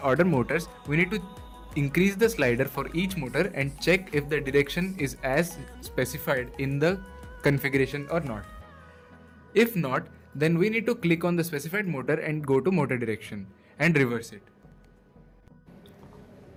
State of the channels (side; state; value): both; identical; correlation 1.00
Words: motors, we need to increase the slider for each motor and check if the direction is as specified in the configuration or not. If not, then we need to click on the specified motor and go to motor direction and reverse it.